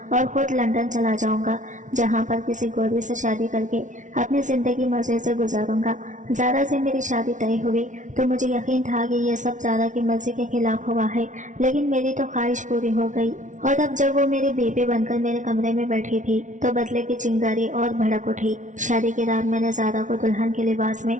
और खुद लंदन चला जाऊंगा, जहाँ पर किसी गोरी से शादी करके अपनी ज़िंदगी मज़े से गुजारूंगा। ज़ारा से मेरी शादी तय हुई तो मुझे यकीन था कि यह सब ज़ारा की मर्जी के खिलाफ हुआ है, लेकिन मेरी तो ख्वाहिश पूरी हो गई। और अब जब वो मेरी बीवी बनकर मेरे कमरे में बैठी थी तो बदले की चिंगारी और भड़क उठी। शादी की रात मैंने ज़ारा को दुल्हन के लिबास में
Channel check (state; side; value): late; left; 0.37 ms